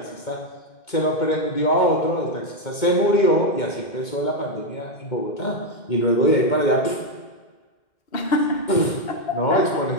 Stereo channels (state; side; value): late; right; 2.2 ms